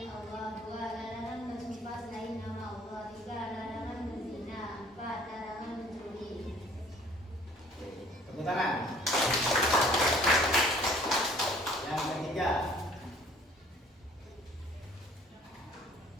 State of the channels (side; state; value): both; normal; correlation 0.55